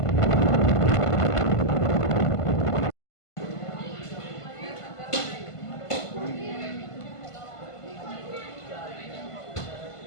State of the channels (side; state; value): right; late; 1.5 ms